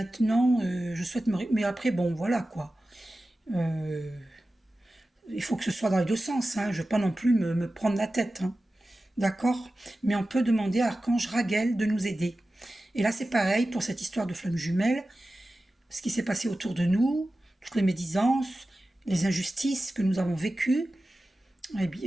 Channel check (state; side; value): normal; both; correlation 0.95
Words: je souhaite me... Mais après, bon, voilà, quoi. Il faut que ce soit dans les deux sens, hein. Je ne veux pas non plus me prendre la tête, hein. D'accord? Mais on peut demander à Archange Raguel de nous aider. Et là, c'est pareil pour cette histoire de flammes jumelles, ce qui s'est passé autour de nous, toutes les médisances, les injustices que nous avons vécues,